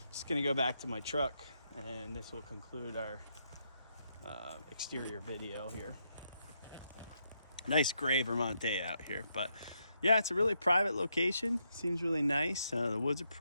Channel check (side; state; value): both; inverted; correlation -0.79